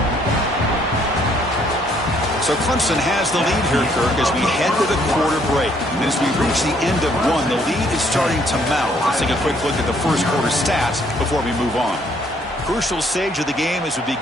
So Clemson has the lead here, Kirk, as we head to the quarter break. And as we reach the end of one, the lead is starting to mount. Let's take a quick look at the first quarter stats before we move on. Crucial stage of the game as we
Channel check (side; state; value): both; normal; correlation 0.66